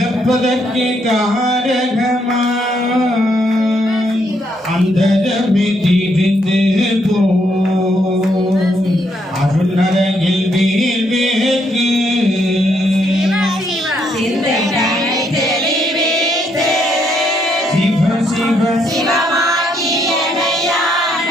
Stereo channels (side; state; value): both; normal; correlation 0.74